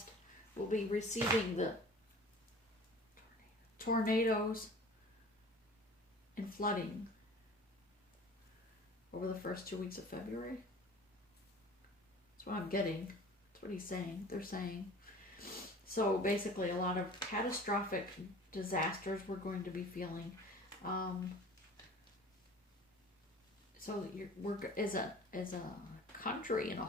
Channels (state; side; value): normal; both; correlation 0.44